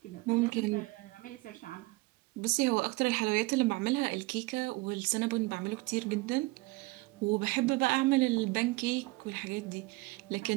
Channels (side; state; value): left; quieter; 23.1 dB